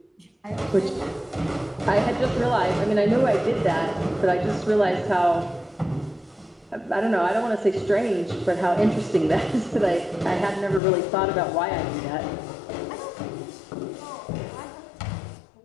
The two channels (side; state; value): right; drops out; at 10.8 s